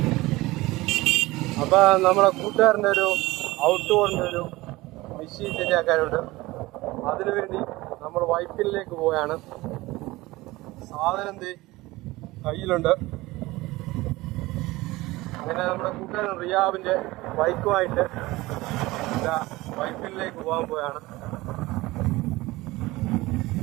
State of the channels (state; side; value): quieter; left; 19.8 dB